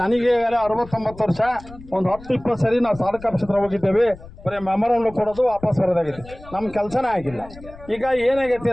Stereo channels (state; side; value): noise; left; rumble, 19 dB below the sound